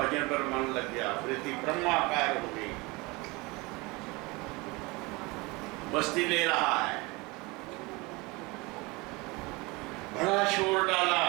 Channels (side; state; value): left; quieter; 24.8 dB